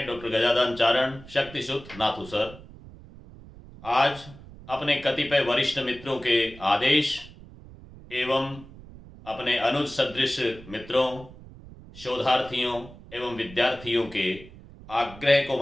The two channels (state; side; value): noise; right; rumble, 18 dB below the sound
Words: डॉक्टर गजानन चारण शक्तिसुत नाथू सर आज अपने कतिपय वरिष्ठ मित्रों के आदेश एवं अपने अनुज सदृश मित्रों, शोधार्थियों एवं विद्यार्थियों के आग्रह को